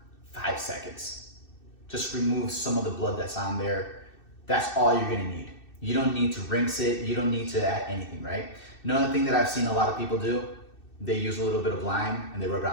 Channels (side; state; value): right; late; 2.6 ms